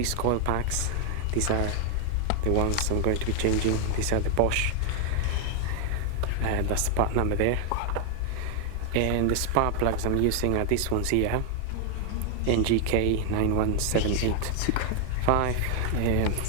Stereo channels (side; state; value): both; different; correlation 0.00